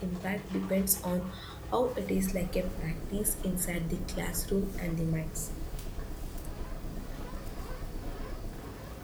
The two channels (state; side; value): identical; both; correlation 1.00